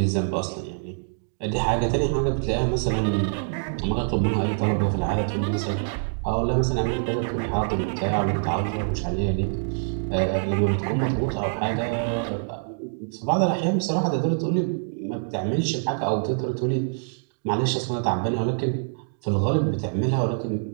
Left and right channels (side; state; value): left; silent; digital silence